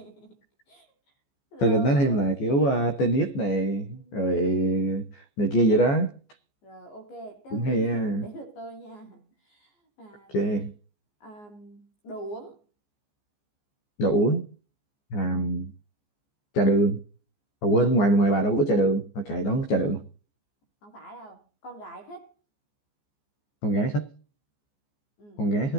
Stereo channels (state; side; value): late; right; 14 ms